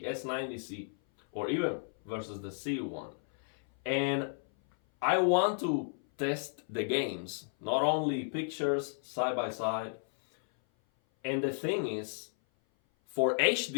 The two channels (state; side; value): silent; right; 56 dB below the other